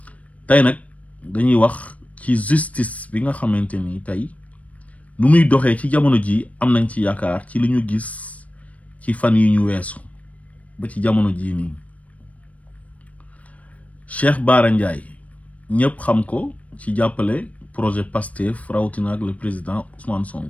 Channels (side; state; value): right; late; 0.067 ms